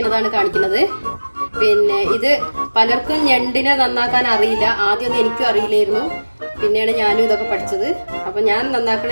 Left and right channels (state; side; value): inverted; both; correlation -1.00